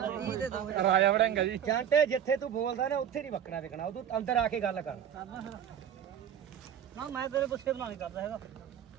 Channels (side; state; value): left; quieter; 9.2 dB